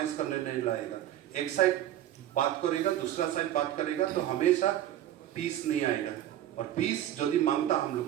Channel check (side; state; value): left; quieter; 12.3 dB